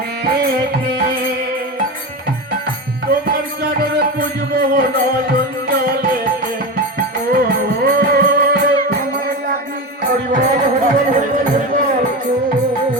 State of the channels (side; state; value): both; normal; correlation 0.22